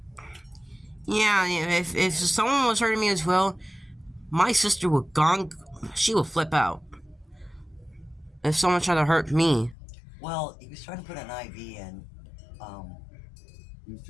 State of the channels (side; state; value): right; drops out; at 9.8 s